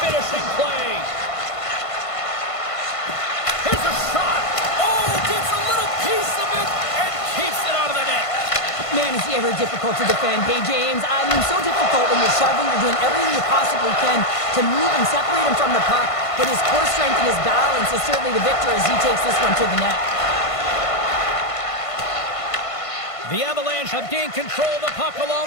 play. Here's a shot. Oh, gets a little piece of it and keeps it out of the net. Man, is he ever difficult to defend. Hey, James, I mean, so difficult when you're shoving, you're doing everything you possibly can to move and separate him from the puck, but his core strength and his balance is certainly the victor as he takes this one to the net. The Avalanche have gained control of the puck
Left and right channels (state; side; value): late; right; 1.5 ms